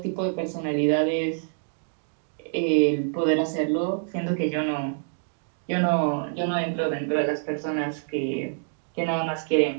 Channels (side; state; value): left; silent; digital silence